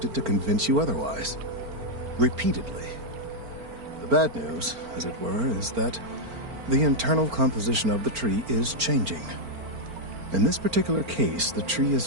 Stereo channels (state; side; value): late; left; 4.4 ms